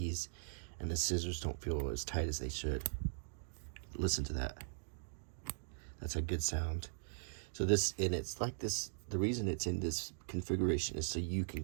and the scissors don't feel as tight as they should. Listen to that. That's a good sound. So it's like this, the reason it's in this configuration is so you can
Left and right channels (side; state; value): left; silent; digital silence